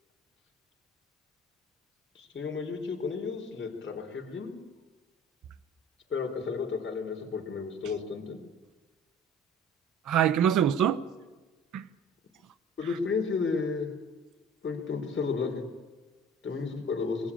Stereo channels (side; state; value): both; normal; correlation 0.45